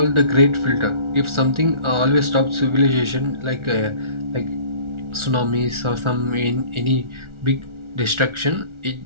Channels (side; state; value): left; late; 1.4 ms